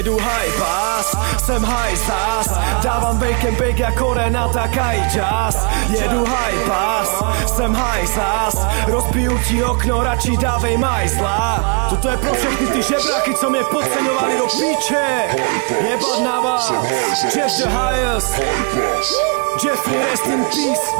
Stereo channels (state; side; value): quieter; left; 36.5 dB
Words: high pass, jsem high zas. Dávám bake jako Renata Kajčas. Jedu high pass, jsem high zas. Rozbiju ti okno, radši dávej majzla. Toto je pro všechny ty žebráky, co mě podceňovali do píče. Jebat na vás, Jeff the highest, Jeffrey rest in peace.